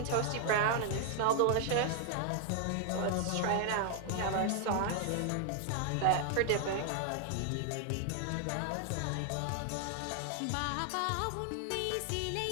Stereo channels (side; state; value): both; different; correlation 0.00